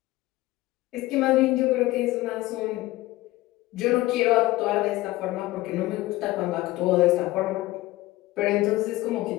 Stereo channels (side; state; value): right; quieter; 18.2 dB